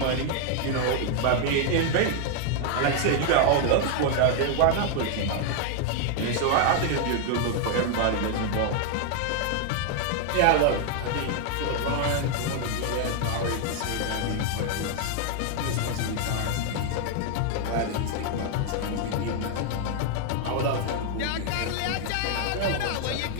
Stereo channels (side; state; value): both; different; correlation 0.00